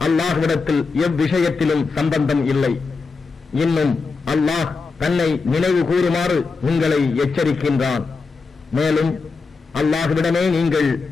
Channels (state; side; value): quieter; right; 4.4 dB